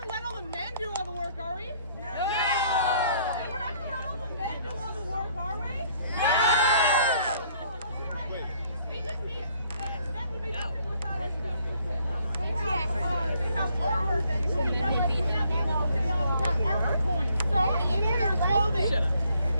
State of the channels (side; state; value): both; inverted; correlation -0.64